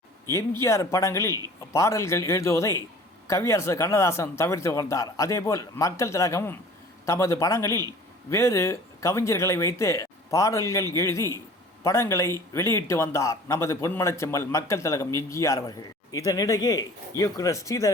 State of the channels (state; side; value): normal; both; correlation 0.46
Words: எம்ஜிஆர் படங்களில் பாடல்கள் எழுதுவதை கவியரசு கண்ணதாசன் தவிர்த்து வந்தார். அதேபோல் மக்கள் திலகமும் தமது படங்களில் வேறு கவிஞர்களை வைத்து பாடல்கள் எழுதி படங்களை வெளியிட்டு வந்தார் நமது பொன்மனச்செம்மல் மக்கள் திலகம் எம்ஜிஆர் அவர்கள். இதனிடையே இயக்குனர்